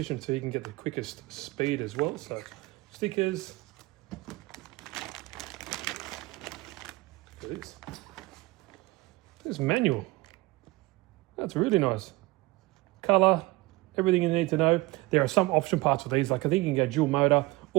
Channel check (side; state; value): left; quieter; 21.3 dB